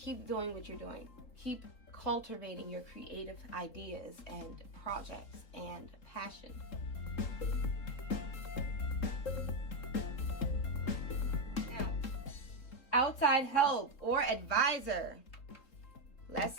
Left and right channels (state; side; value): late; right; 3.7 ms